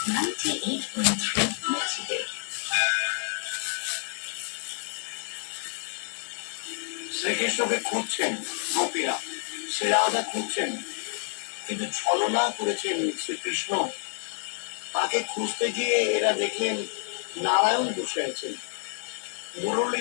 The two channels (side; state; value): right; silent; 59 dB below the other